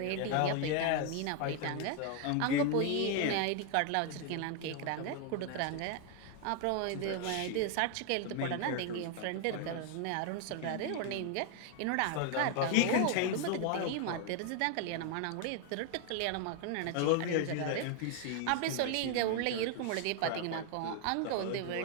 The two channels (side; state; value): both; different; correlation 0.01